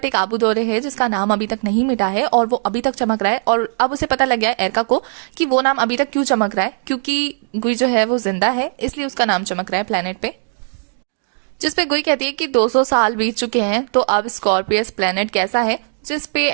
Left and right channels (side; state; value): left; silent; digital silence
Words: एक आबू दौरे है जिसका नाम अभी तक नहीं मिटा है और वो अभी तक चमक रहा है। और अब उसे पता लग गया है एरका को कि वो नाम अभी तक क्यों चमक रहा है, क्योंकि गुई जो है वो जिंदा है, इसलिए उसका नाम चमक रहा है प्लेनेट पे। जिसपे गुई कहती है कि 200 साल बीत चुके हैं तो अब स्कॉर्पियस प्लेनेट कैसा है, जिसपे